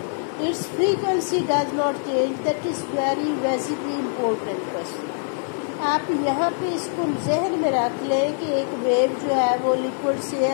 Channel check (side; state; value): right; silent; 63 dB below the other